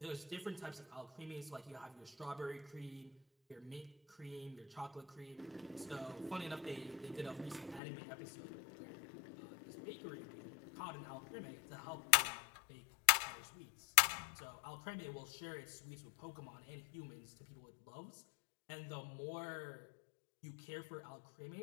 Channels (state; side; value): drops out; right; at 7.8 s